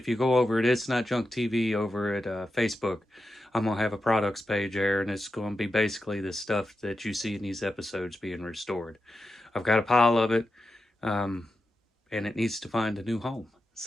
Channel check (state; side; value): normal; both; correlation 0.89